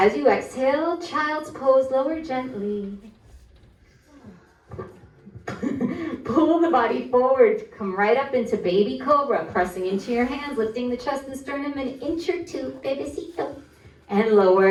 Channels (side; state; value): both; identical; correlation 1.00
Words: you exhale, child's pose, lower gently. Pull the body forward, come right up into baby cobra, pressing into your hands, lifting the chest and sternum an inch or 2, bebecito, and